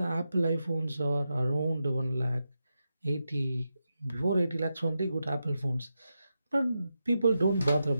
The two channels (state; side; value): inverted; both; correlation -0.88